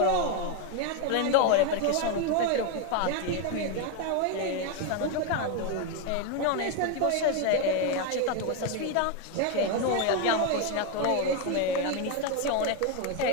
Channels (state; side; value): different; both; correlation 0.01